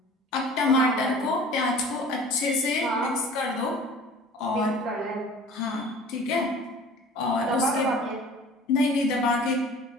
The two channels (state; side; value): normal; both; correlation 0.45